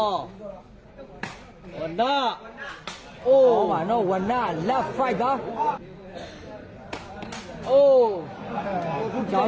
ဝနာအိုးပါနော်ဝနာလက်5ပါအိုးကြောင်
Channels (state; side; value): identical; both; correlation 1.00